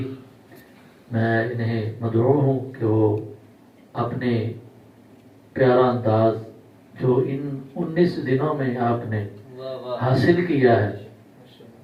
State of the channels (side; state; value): both; identical; correlation 1.00